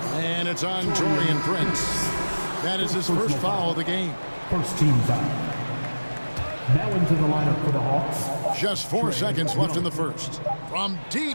And it's on Torian Prince. That is his first foul of the game. First team foul. Now into the lineup for the Hawks. Just 4 seconds left in the first. From deep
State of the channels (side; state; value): both; inverted; correlation -1.00